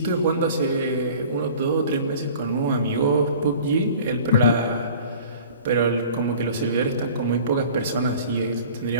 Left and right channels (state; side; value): inverted; both; correlation -0.45